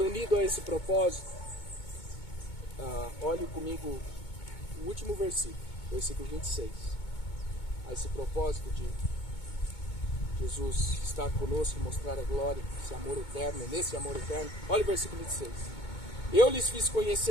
unido a esse propósito, olhe comigo o último versículo, versículo 26. A esse propósito de Jesus estar conosco, mostrar a glória, esse amor eterno, nesse amor eterno. Olha o versículo 26. Eu lhes fiz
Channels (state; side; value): late; right; 2.2 ms